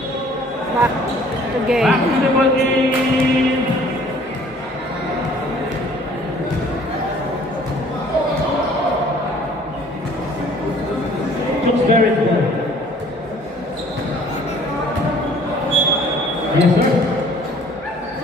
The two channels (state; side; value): normal; both; correlation 0.55